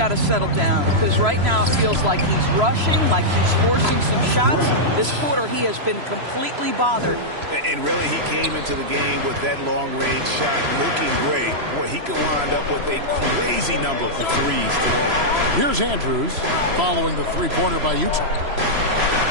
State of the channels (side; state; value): left; late; 3.0 ms